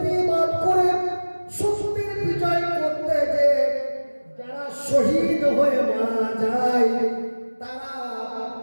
করে সত্যের বিজয় করতে যে যারা শহীদ হয়ে মারা যায় তারা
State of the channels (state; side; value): inverted; both; correlation -1.00